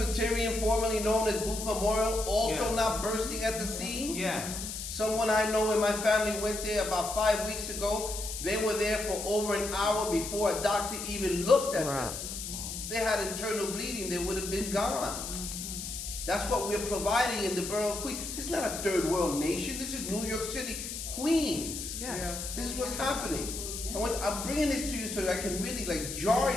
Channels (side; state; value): left; noise; hiss, 6 dB below the sound